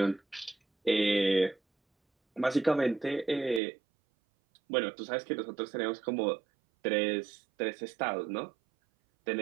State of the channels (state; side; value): drops out; left; at 3.6 s